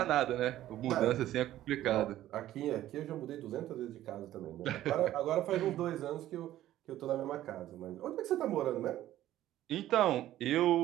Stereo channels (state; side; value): quieter; left; 13.6 dB